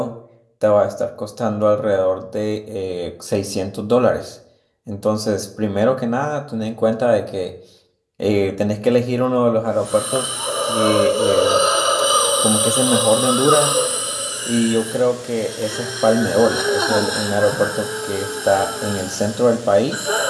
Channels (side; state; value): both; identical; correlation 1.00